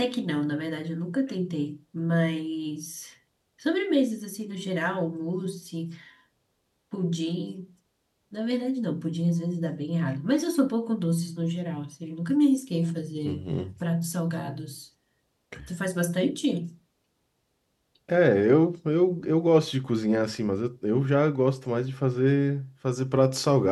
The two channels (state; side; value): identical; both; correlation 1.00